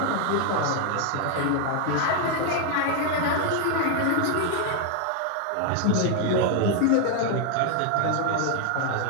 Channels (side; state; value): both; different; correlation 0.00